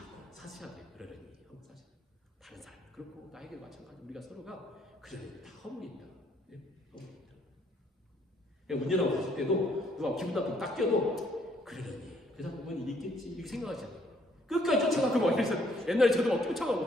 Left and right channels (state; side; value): normal; both; correlation 0.66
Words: 사셔야 돼요. 그러려니 하고 사셔야 돼요. 다른 사람 그렇고 나에게 마찬가지 우리가 서로가 그러려니 다 허물이 있다. 네? 허물이 있다. 문제라고 봤을 때도 누가 기분 나쁘게 딱 껴도 그러려니 그 사람 뭔 일이 있겠지 이렇게 생각하지 않아요. 끝까지 쫓아가고 막 이래서 옛날에 저도 막 쫓아가고